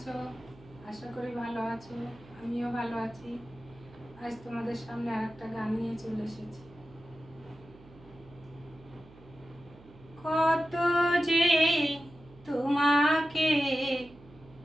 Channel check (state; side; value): noise; right; hum, 23 dB below the sound